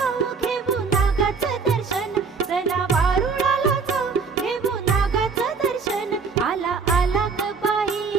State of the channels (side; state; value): left; quieter; 5.0 dB